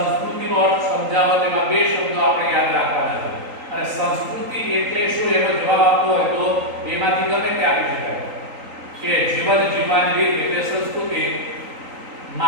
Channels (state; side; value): late; left; 3.8 ms